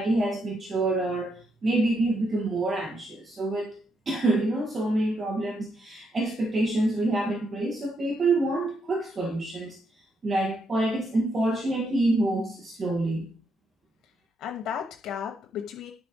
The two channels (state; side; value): normal; both; correlation 0.78